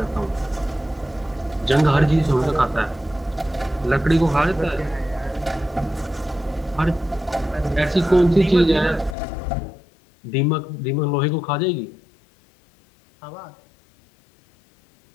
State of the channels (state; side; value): drops out; right; at 9.2 s